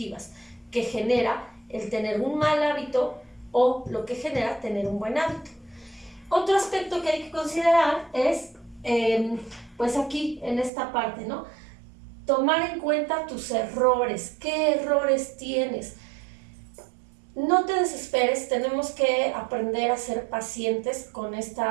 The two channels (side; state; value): left; drops out; at 10.7 s